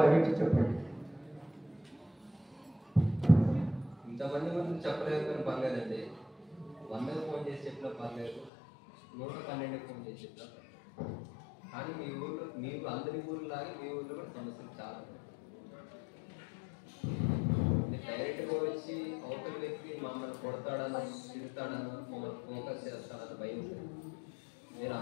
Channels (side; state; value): right; drops out; at 8.5 s